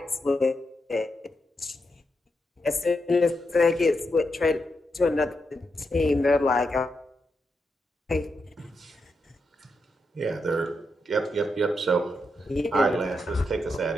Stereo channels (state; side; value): normal; both; correlation 0.84